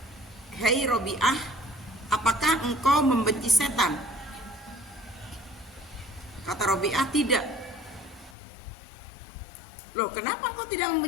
"Hei Robiah, apakah engkau membenci setan?" Kata Robiah, "Tidak." "Loh, kenapa engkau tidak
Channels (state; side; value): drops out; right; at 8.3 s